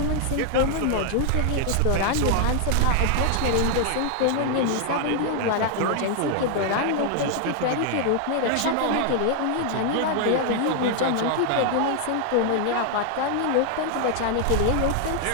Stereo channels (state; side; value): different; both; correlation 0.00